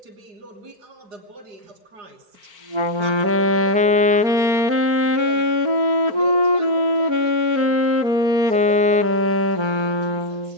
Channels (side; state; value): left; late; 4.5 ms